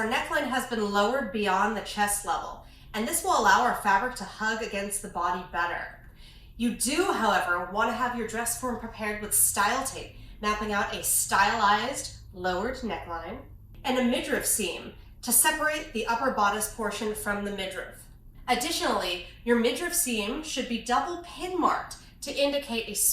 neckline has been lowered beyond the chest level, and this will allow our fabric to hug against the body better. You do, however, want to have your dress form prepared with style tape, mapping out a stylized, lowered neckline, and a midriff seam to separate the upper bodice portion from the midriff. Additionally, your midriff seam should be double pin marked to indicate a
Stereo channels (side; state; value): both; identical; correlation 1.00